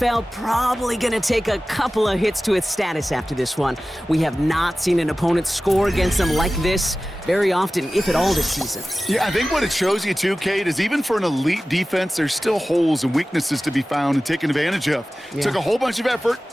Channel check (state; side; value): normal; both; correlation 0.96